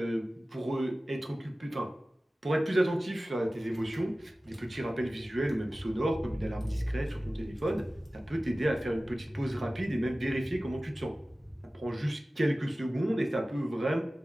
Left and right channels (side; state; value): both; normal; correlation 0.96